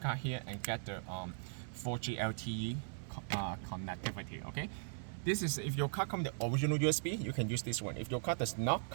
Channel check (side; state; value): left; silent; 52 dB below the other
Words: here and get the 4G LTE connectivity, okay? This is, if your card comes with the original USB, you can use this one. If your card does not